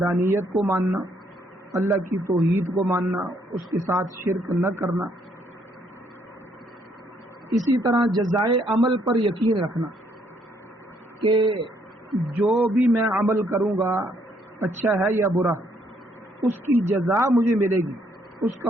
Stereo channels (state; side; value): normal; both; correlation 0.70